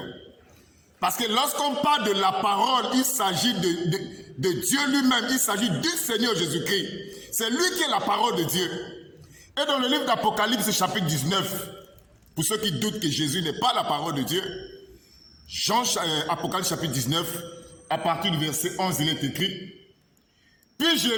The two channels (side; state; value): both; identical; correlation 1.00